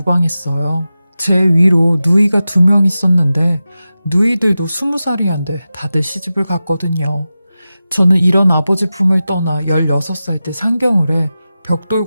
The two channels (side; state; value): both; inverted; correlation -0.94